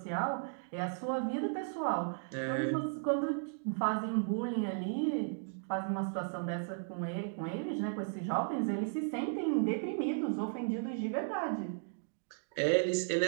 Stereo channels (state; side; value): silent; left; digital silence